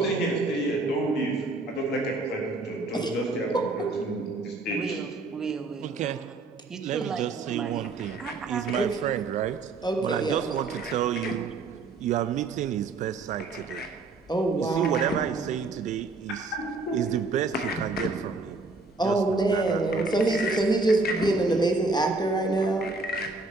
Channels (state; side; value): quieter; left; 3.6 dB